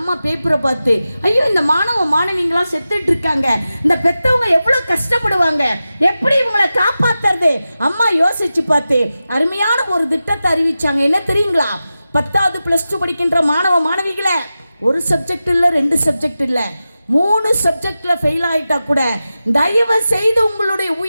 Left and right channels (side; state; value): both; inverted; correlation -0.93